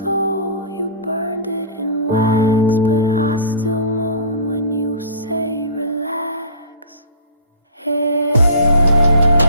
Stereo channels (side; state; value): both; inverted; correlation -0.40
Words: you burned it in wax. But I still moan when you say relax. Hey,